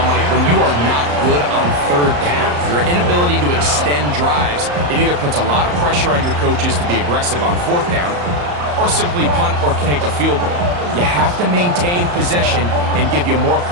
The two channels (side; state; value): left; late; 34 ms